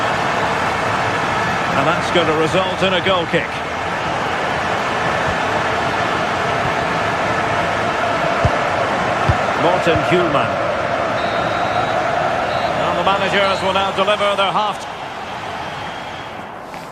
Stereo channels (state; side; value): identical; both; correlation 1.00